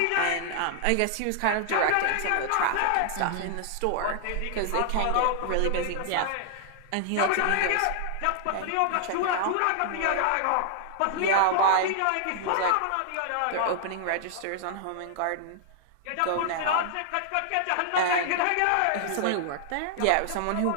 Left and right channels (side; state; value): both; different; correlation -0.01